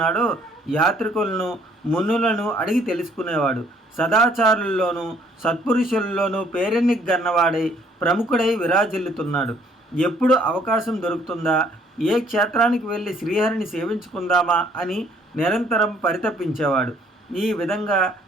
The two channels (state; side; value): normal; both; correlation 0.62